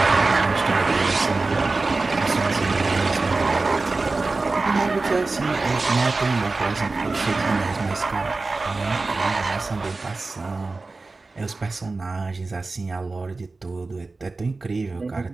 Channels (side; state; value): left; quieter; 3.6 dB